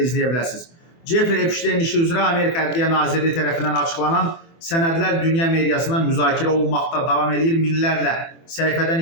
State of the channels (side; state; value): right; late; 24 ms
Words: izləyə biləsiniz. Jeffrey Epstein işi üzrə Amerika Ədliyyə Nazirliyi tərəfindən açıqlanan sənədlər dünya mediasında müzakirə olunmaqda davam edir. Minlərlə